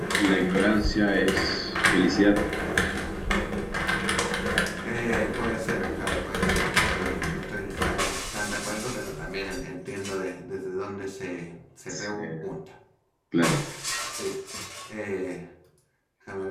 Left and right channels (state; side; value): identical; both; correlation 1.00